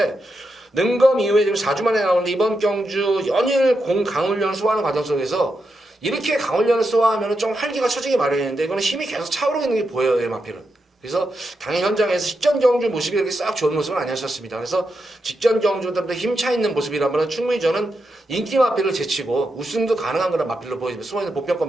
능검 이후에 지금 4주 만에 나오는데 이번 경주 연일 강훈련을 소화하는 과정 속에서 이렇게 강훈련을 소화하면 좀 활기가 처지기 마련인데 이거는 힘이 계속 차오르고 있는 게 보여요. 마필은. 그래서 당일 현장에서 직전 경주 모습이 이렇게 싹 좋은 모습은 아니었습니다. 그래서 직전 경주보다 힘차 있는 모습이라면 충분히 저는 인기 마필을 제치고 우승도 가능한 그런 마필로 보여집니다. 숨어있는 보편권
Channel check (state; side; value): normal; both; correlation 0.86